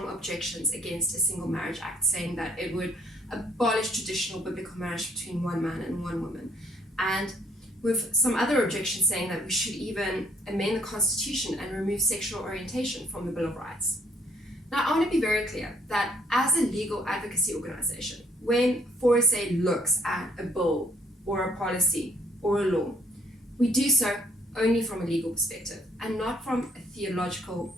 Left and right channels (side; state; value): both; normal; correlation 0.65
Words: objections against a Single Marriage Act, saying that it would abolish traditional biblical marriage between one man and one woman, and with some other objections saying that we should even amend the Constitution and remove sexual orientation from the Bill of Rights. Now, I want to be very clear that as a legal advocacy organization, when 4SA looks at a bill or a policy or a law, we do so only from a legal perspective and not from a theological,